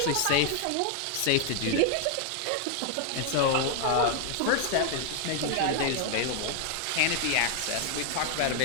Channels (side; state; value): both; different; correlation 0.00